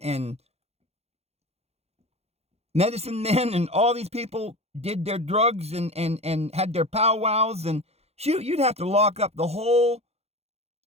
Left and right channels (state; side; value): late; left; 0.30 ms